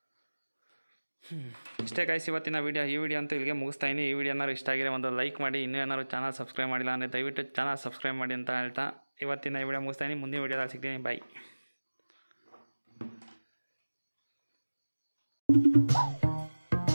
ಇಷ್ಟೇ ಗೈಸ್ ಇವತ್ತಿನ ವೀಡಿಯೋ. ಈ ವಿಡಿಯೋ ಅಂತೂ ಇಲ್ಲಿಗೆ ಮುಗಿಸ್ತಾಯಿನಿ. ಈ ವಿಡಿಯೋ ಏನಾದ್ರು ಇಷ್ಟ ಆಗಿರೋ ಒಂದು ಲೈಕ್ ಮಾಡಿ. ಇನ್ನೂ ಏನಾದ್ರು ಚಾನಲ್ ಸಬ್ಸ್ಕ್ರೈಬ್ ಮಾಡಿಲ್ಲ ಅಂದರೆ ದಯವಿಟ್ಟು ಚಾನಲ್ ಸಬ್ಸ್ಕ್ರೈಬ್ ಮಾಡಿ ಅಂತ ಹೇಳ್ತಾ ಇವತ್ತಿನ ಈ ವಿಡಿಯೋ ಮುಗಿಸ್ತಾಯಿನಿ. ಮುಂದಿನ ವಿಡಿಯೋದಲ್ಲಿ ಸಿಗ್ತೀನಿ. ಬಾಯ್.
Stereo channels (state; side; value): inverted; both; correlation -1.00